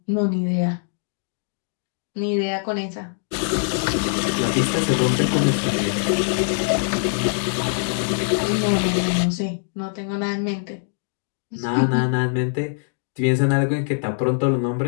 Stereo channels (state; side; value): silent; right; digital silence